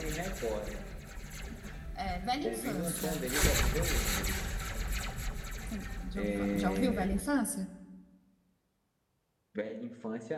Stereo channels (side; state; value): both; identical; correlation 1.00